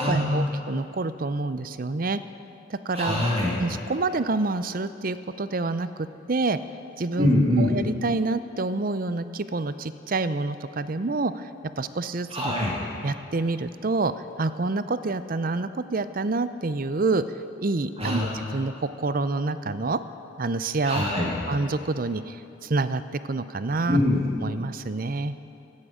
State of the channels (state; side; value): normal; both; correlation 0.48